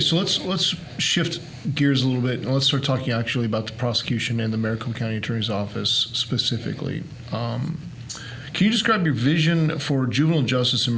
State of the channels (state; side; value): identical; both; correlation 1.00